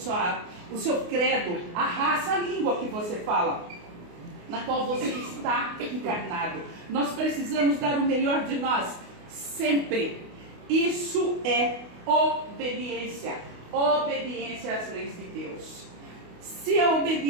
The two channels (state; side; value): late; left; 28 ms